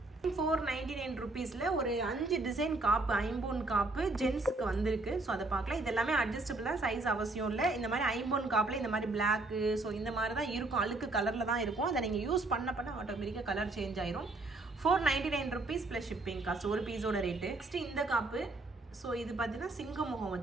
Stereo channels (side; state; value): left; quieter; 3.0 dB